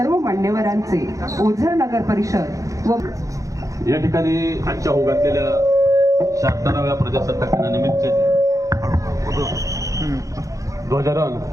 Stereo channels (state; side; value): late; left; 0.16 ms